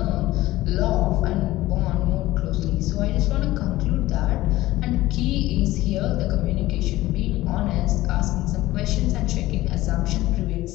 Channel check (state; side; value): quieter; right; 16.9 dB